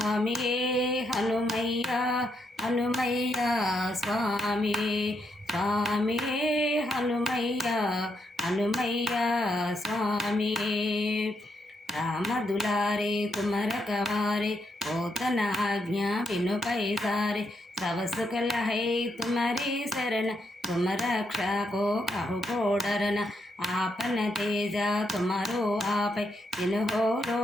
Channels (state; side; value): normal; both; correlation 0.79